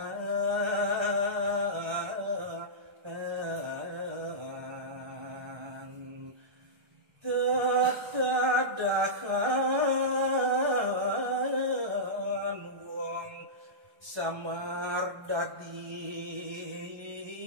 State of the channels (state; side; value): late; left; 1.3 ms